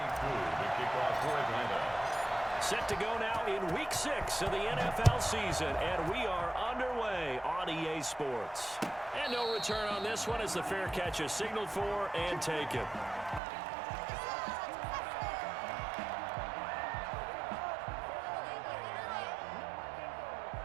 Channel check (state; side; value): drops out; left; at 13.4 s